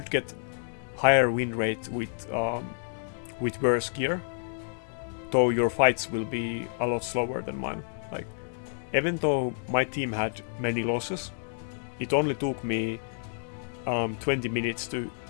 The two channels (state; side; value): silent; right; digital silence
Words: get higher win rate with worse gear, though your fights will be a lot slower than mine. Like, even though my team had many losses, it only took me 20 minutes to